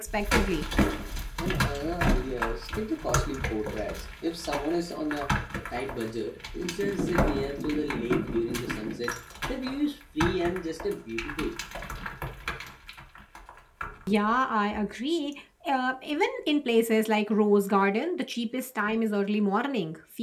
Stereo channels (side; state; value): both; identical; correlation 1.00